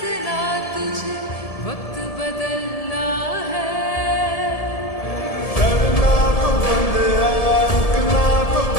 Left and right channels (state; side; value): late; right; 1.7 ms